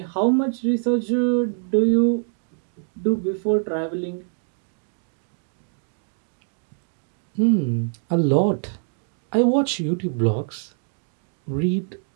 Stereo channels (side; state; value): left; silent; 59 dB below the other